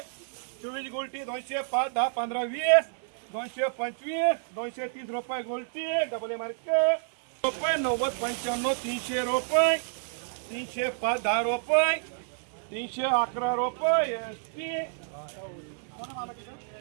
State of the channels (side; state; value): left; silent; digital silence